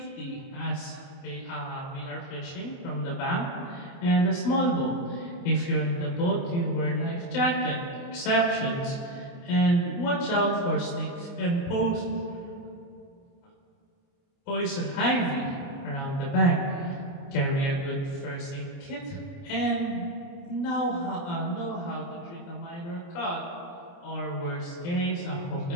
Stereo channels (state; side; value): late; right; 29 ms